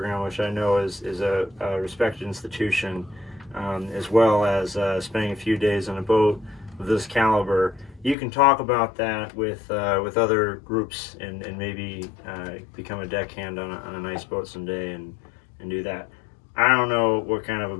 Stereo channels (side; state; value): right; drops out; at 8.2 s